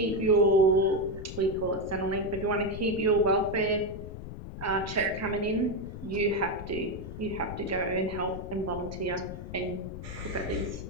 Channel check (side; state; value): left; noise; rumble, 10 dB below the sound